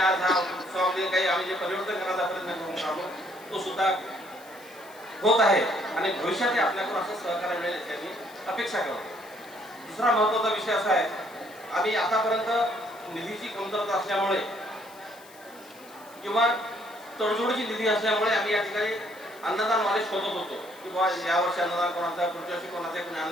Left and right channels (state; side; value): noise; left; hiss, 23 dB below the sound